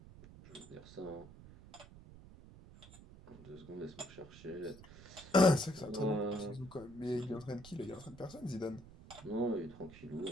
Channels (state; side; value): noise; right; rumble, 18 dB below the sound